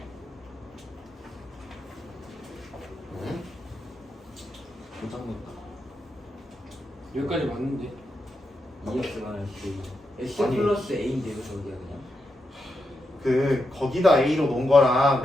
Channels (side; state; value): both; normal; correlation 0.86